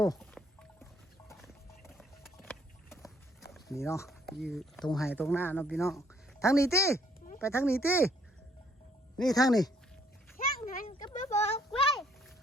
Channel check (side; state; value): both; normal; correlation 0.65